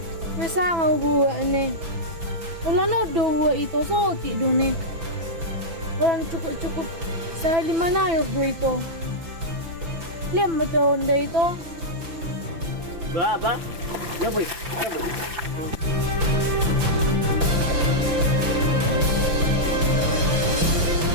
Masa nga buwa ni. Wala no do buwa ito. So, ti do ni. Walang cukup-cukup sa 5 layos do ito. Liam mo to onda ito. Ba? Ya boy.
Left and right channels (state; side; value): late; left; 6.0 ms